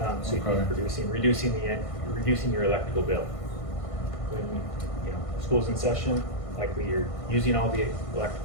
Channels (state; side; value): late; right; 1.5 ms